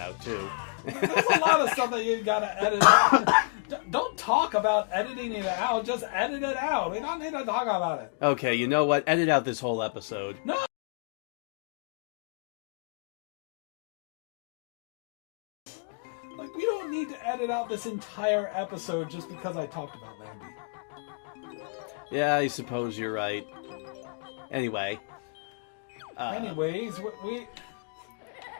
too. There's a lot of stuff that you gotta edit out. Don't talk about editing it out, just edit it out. We don't need to talk about it. Okay, you know what? Edit out this whole episode. No! Like, we don't need to edit out this entire episode just because I talked about Lambie. Yeah, I suppose you're right. Anyway. Anyways, we...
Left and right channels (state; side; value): quieter; right; 39.3 dB